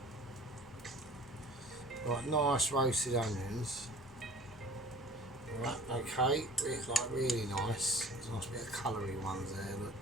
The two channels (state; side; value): normal; both; correlation 0.44